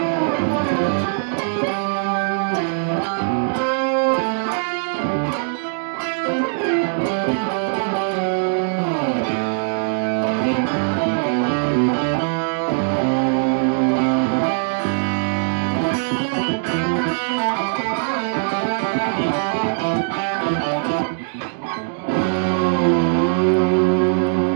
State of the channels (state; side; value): silent; left; 65 dB below the other